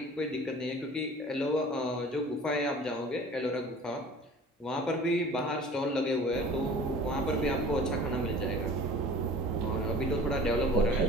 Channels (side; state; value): both; normal; correlation 0.44